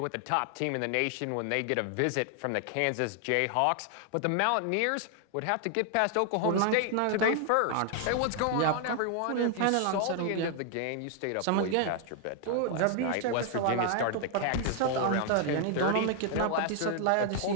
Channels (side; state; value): both; different; correlation 0.00